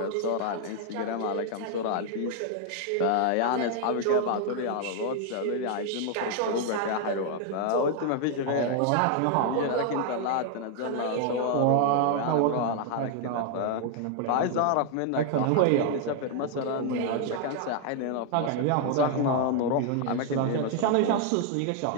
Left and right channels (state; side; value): different; both; correlation 0.00